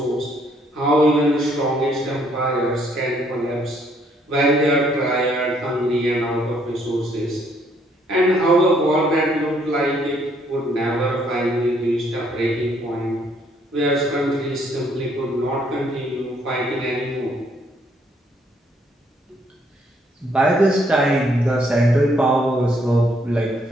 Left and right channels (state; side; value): normal; both; correlation 0.68